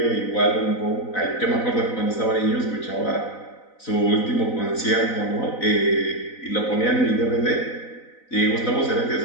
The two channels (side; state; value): right; late; 4.0 ms